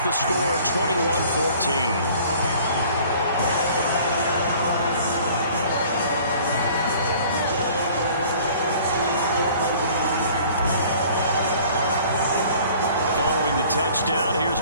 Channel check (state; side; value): inverted; both; correlation -0.51